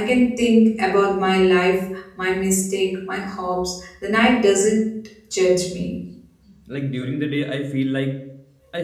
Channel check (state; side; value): identical; both; correlation 1.00